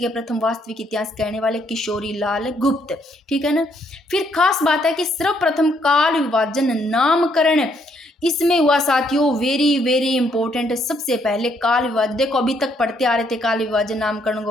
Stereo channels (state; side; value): normal; both; correlation 0.71